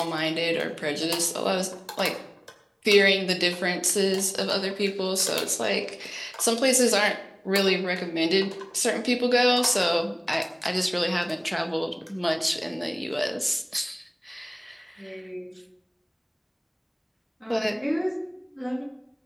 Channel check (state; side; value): identical; both; correlation 1.00